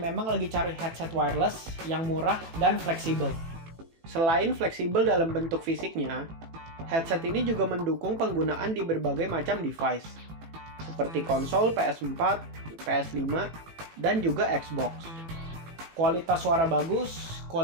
lagi cari headset wireless yang murah dan fleksibel. Selain fleksibel dalam bentuk fisiknya, headset ini juga mendukung penggunaan di berbagai macam device, seperti konsol PS4, PS5, dan juga Xbox. Kualitas suara bagus,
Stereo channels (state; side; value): late; left; 18 ms